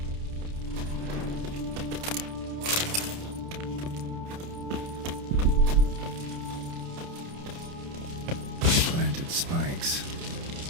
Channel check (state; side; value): late; left; 29 ms